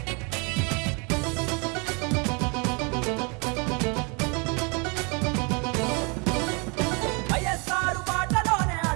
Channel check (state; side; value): quieter; left; 31.8 dB